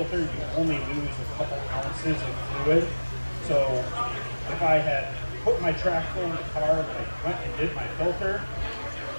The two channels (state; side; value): inverted; both; correlation -1.00